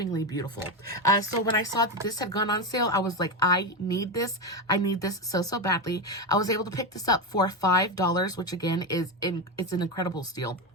beautiful. So when I saw that this had gone on sale, I was like, I need this. I need this so, so badly. I was able to pick this up for $5, which again it's an incredible steal.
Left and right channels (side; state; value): both; normal; correlation 0.13